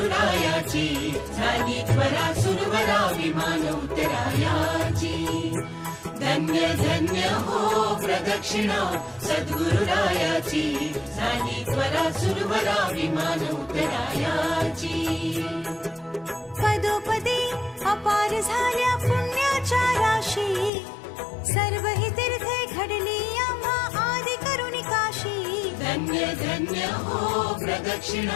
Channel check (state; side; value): drops out; right; at 20.7 s